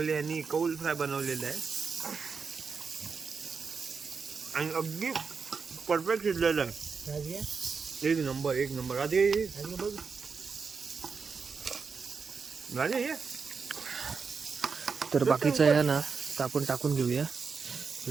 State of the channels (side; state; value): left; quieter; 5.3 dB